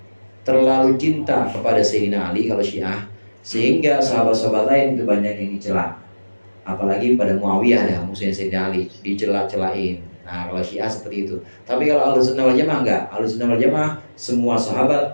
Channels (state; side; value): inverted; both; correlation -1.00